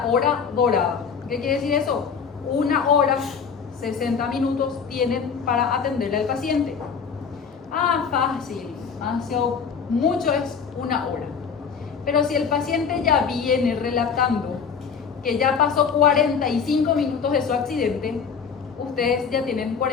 hora dorada. ¿Qué quiere decir eso? 1 hora, 60 minutos tienen para atenderle al paciente. Fácil, mucho es 1 hora. Pero si el paciente ya viene relatando que ya pasó 45 minutos de su accidente, ustedes ya tienen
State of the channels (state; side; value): quieter; right; 6.3 dB